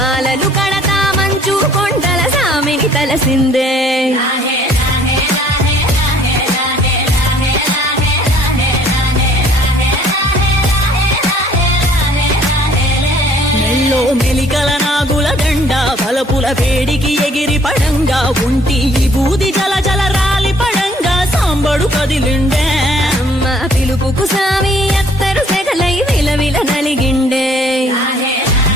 కడతా మంచు కొండల సామిని తలసిందే మెల్లో మెలికల నాగుల దండ బలపుల వేడికి ఎగిరి పడంగా ఉంటి బూది జల జల రాలి పడంగా సాంబడు కదిలిండే అమ్మ పిలుపుకు సామి అత్తరు సెగలై విలవిల నలిగిండే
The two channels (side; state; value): both; normal; correlation 0.59